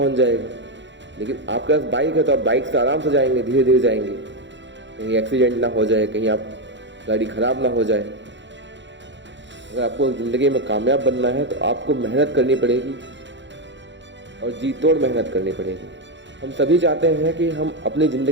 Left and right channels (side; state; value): left; late; 0.53 ms